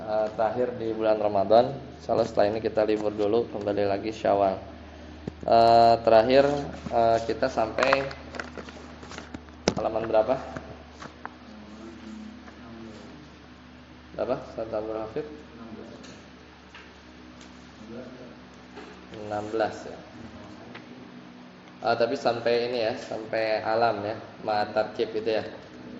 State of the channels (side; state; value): both; identical; correlation 1.00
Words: terakhir di bulan Ramadan. Insyaallah setelah ini kita libur dulu, kembali lagi Syawal. Terakhir kita sampai halaman berapa? Berapa? Ustaz Abdul Hafid? 16 ya. Tapi sampai ini ya, sampai alam ya, ma'atarkib itu ya.